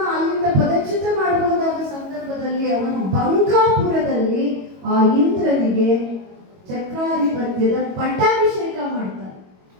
ಅಲ್ಲಿಂದ ಪದಚ್ಯುತ ಮಾಡಬಹುದಾದ ಸಂದರ್ಭದಲ್ಲಿ ಅವನು ಬಂಕಾಪುರದಲ್ಲಿ ಆ ಇಂದ್ರನಿಗೆ ಚಕ್ರಾಧಿಪತ್ಯದ ಪಟ್ಟಾಭಿಷೇಕ ಮಾಡ್ತಾನೆ.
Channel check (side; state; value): left; late; 22 ms